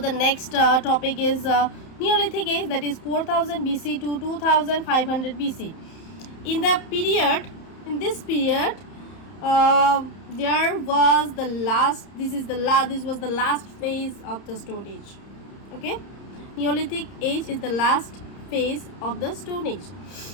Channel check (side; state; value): right; late; 31 ms